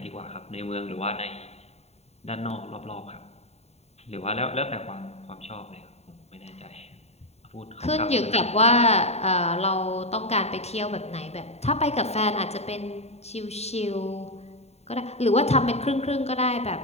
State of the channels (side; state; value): right; late; 0.31 ms